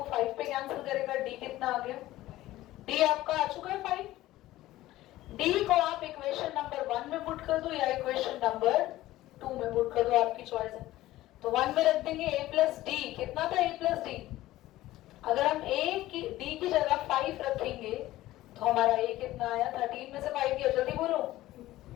5 पे कैंसिल करेगा, डी कितना आ गया, डी आपका आ चुका है 5। डी को आप इक्वेशन नंबर 1 में पुट कर दो या इक्वेशन नंबर 2 में पुट कर दो, आपकी चॉइस है। तो 1 में रख देंगे a प्लस डी, कितना था a प्लस डी, अगर हम a की d की जगह 5 रखेंगे तो हमारा a कितना आया, 13 में से 5 गया, जल्दी बोलो,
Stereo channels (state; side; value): quieter; right; 16.0 dB